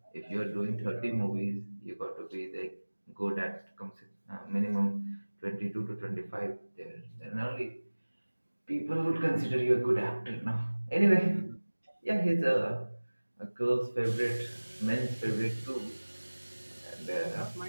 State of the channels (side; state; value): both; inverted; correlation -1.00